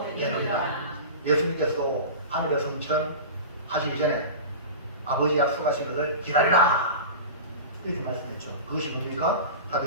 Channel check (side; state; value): both; inverted; correlation -0.31